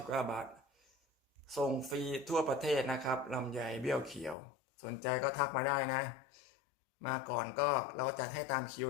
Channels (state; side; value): drops out; right; at 4.4 s